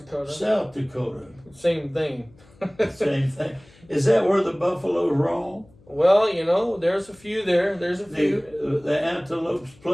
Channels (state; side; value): noise; left; hum, 28 dB below the sound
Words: South Dakota. Same thing. Same thing. Is that where the buffaloes roam? Well, there's a few there. There's a few. The antelopes